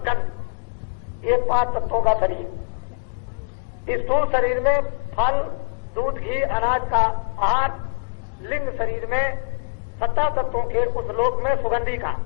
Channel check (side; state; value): right; silent; 57 dB below the other